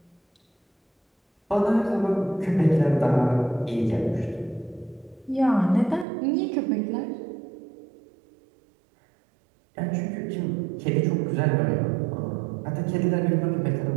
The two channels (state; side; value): drops out; left; at 6.1 s